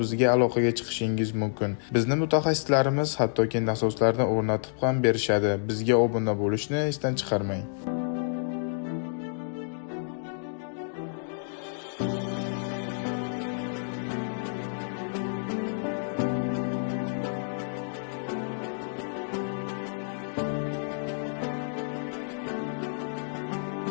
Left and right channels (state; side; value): silent; right; digital silence